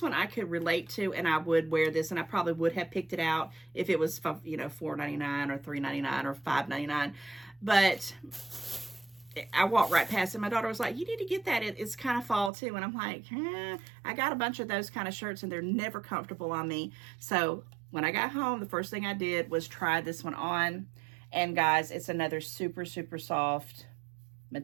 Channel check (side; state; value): left; drops out; at 12.5 s